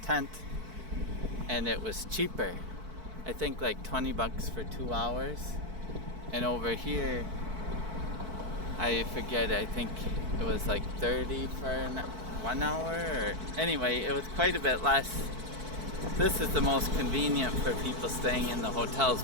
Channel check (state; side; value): late; left; 4.5 ms